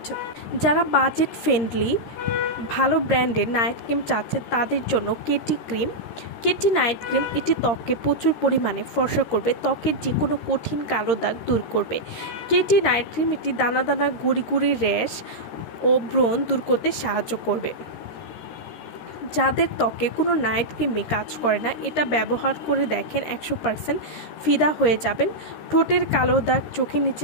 যারা বাজেট ফ্রেন্ডলি ভালো ব্র্যান্ডের নাইট ক্রিম চাচ্ছে তাদের জন্য কেটি নাইট ক্রিম এটি ত্বকে প্রচুর পরিমাণে ফর্সা করবে, ত্বকের যে কোনো কঠিন কালো দাগ দূর করবে। কেটি নাইট ক্রিম এটি দানা দানা গুড়ি গুড়ি র্যাশ ও ব্রণ দূর করতে সাহায্য করবে। যাদের ত্বকে কোনো নাইট ক্রিমে কাজ করে না, এটা ব্যবহার করে দেখেন 100% ফিদা হয়ে যাবেন। ঠোঁটের কালো দাগ, চোখের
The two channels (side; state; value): right; late; 13 ms